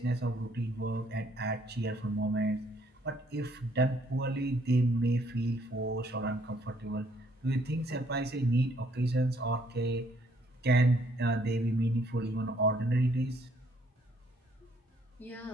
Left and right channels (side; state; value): both; normal; correlation 0.66